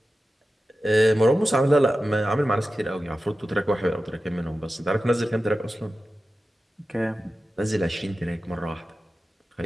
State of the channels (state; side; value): normal; both; correlation 0.93